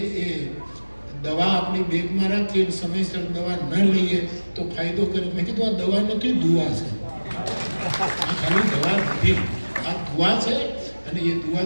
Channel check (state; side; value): inverted; both; correlation -1.00